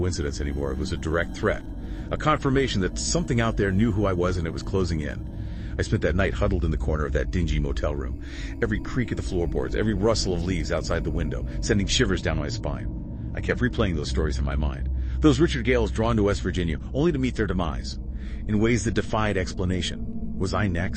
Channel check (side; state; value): both; identical; correlation 1.00